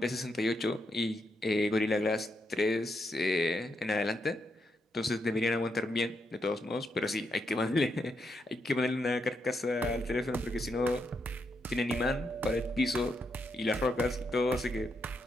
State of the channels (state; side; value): normal; both; correlation 0.81